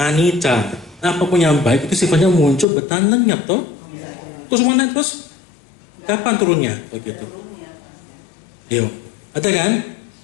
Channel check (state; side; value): drops out; right; at 2.7 s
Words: anicca. Apapun yang baik itu sifatnya muncul bertahan lenyap toh. Terus mana terus? Kapan turunnya? Begitu. Yuk, ada kan?